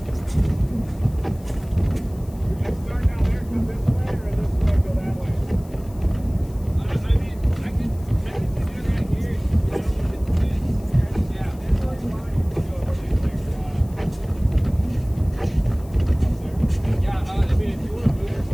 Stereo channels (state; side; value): noise; left; hiss, 25 dB below the sound